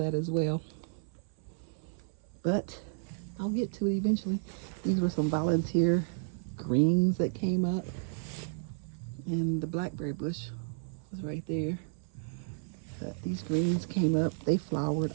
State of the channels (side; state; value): left; silent; 56 dB below the other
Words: as well. But I'll get to it eventually. These were some volunteer greens that came up. And the blackberry bush was right there. But these greens came up. They flowered.